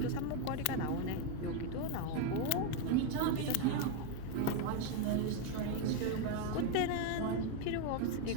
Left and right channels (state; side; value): different; both; correlation 0.02